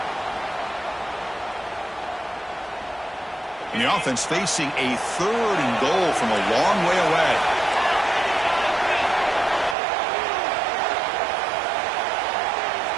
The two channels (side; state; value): left; drops out; at 9.8 s